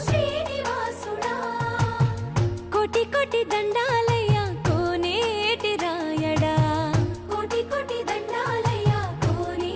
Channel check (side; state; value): both; identical; correlation 1.00